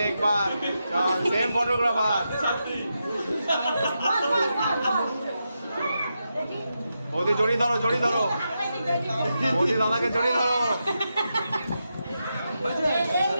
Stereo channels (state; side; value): inverted; both; correlation -0.87